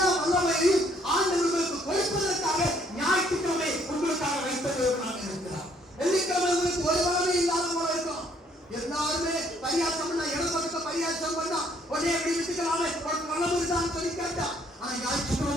வல்லமையையும் ஆண்டவர்களுக்கு கொடுப்பதற்காக ஞாயிற்றுக்கிழமை உங்களுக்காக வைத்த தேவனாக இருக்கிறார். வெள்ளிக்கிழமை உங்களுக்கு ஒரு வல்லமை இல்லாத போல இருக்கும். எல்லாருமே பரியாசம் பண்ணா இடப்பக்க பரியாசம் பண்ணா உடனே எப்படி விட்டுக்கலாமே வல்லமை இருந்தான்னு சொல்லி கேட்டா, ஆனா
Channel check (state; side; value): normal; both; correlation 0.65